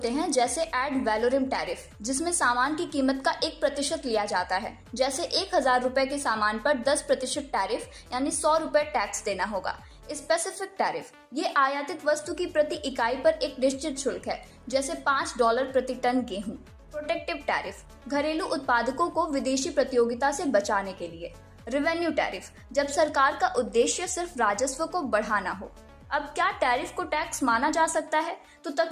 हैं, जैसे एड वैलोरम टैरिफ, जिसमें सामान की कीमत का 1% लिया जाता है। जैसे 1000 रुपए के सामान पर 10% टैरिफ यानी 100 रुपए टैक्स देना होगा। स्पेसिफिक टैरिफ, ये आयातित वस्तु की प्रति इकाई पर एक निश्चित शुल्क है, जैसे $5 प्रति टन गेहूं। प्रोटेक्टिव टैरिफ, घरेलू उत्पादकों को विदेशी प्रतियोगिता से बचाने के लिए। रेवेन्यू टैरिफ, जब सरकार का उद्देश्य सिर्फ राजस्व को बढ़ाना हो। अब क्या टैरिफ को टैक्स माना जा सकता है? तो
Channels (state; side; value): identical; both; correlation 1.00